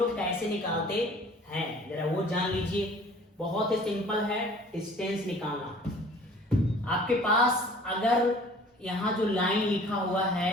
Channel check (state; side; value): normal; both; correlation 0.49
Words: कैसे निकालते हैं जरा वो जान लीजिए। बहुत ही सिंपल है डिस्टेंस निकालना। आपके पास अगर यहाँ जो लाइन लिखा हुआ